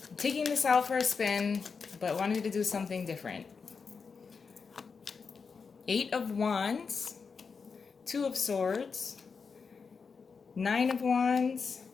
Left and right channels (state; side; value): quieter; right; 5.3 dB